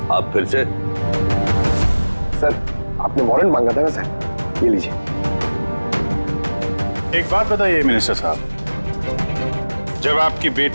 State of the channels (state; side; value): inverted; both; correlation -1.00